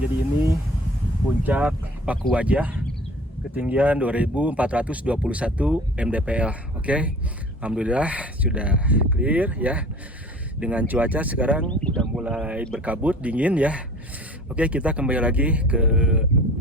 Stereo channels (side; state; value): both; normal; correlation 0.45